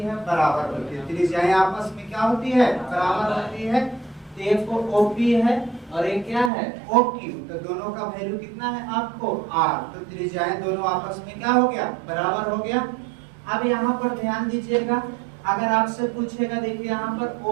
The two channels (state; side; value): drops out; left; at 6.5 s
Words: बराबर होती है, त्रिज्याएं आपस में क्या होती है बराबर होती है, तो एक को OP है और एक क्या है OQ, तो दोनों का वैल्यू कितना है आपको R, तो त्रिज्याएं दोनों आपस में क्या हो गया बराबर हो गया। अब यहाँ पर ध्यान दीजिएगा, अगर आपसे पूछेगा, देखिए यहाँ पर